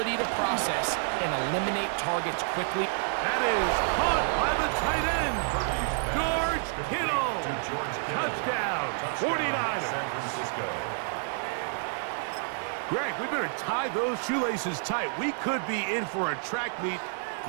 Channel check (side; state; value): left; silent; digital silence